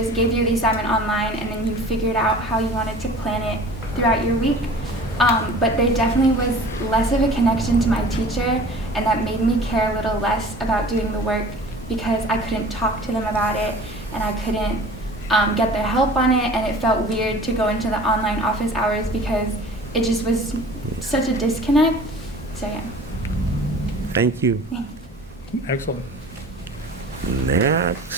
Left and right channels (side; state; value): both; normal; correlation 0.44